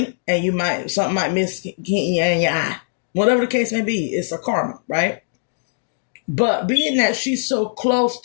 and something might miss in your eye. Whatever the case may be, it's a karma, right? But being that she's so close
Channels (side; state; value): right; silent; digital silence